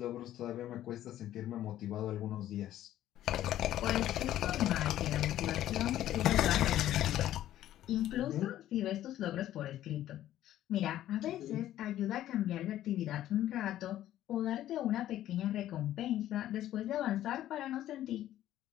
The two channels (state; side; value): quieter; right; 12.9 dB